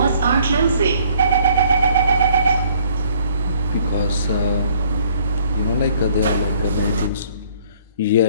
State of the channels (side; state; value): both; inverted; correlation -0.61